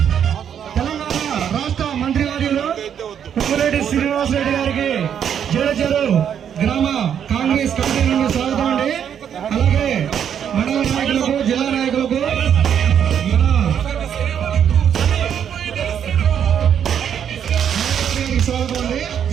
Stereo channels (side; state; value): left; quieter; 8.7 dB